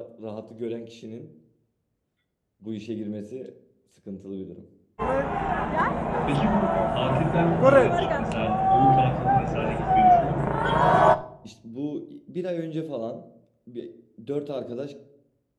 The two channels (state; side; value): identical; both; correlation 1.00